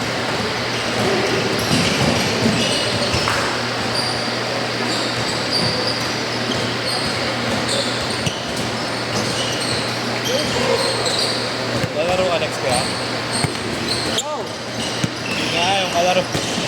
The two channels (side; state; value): both; identical; correlation 1.00